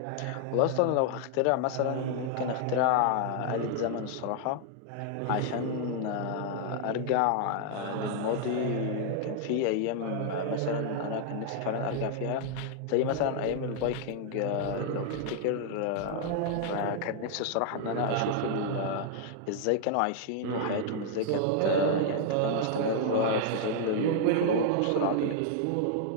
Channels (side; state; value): both; different; correlation 0.00